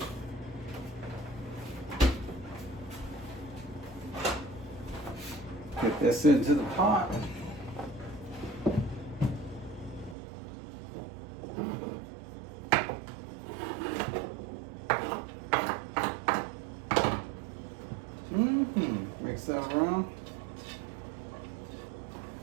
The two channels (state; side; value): drops out; left; at 10.2 s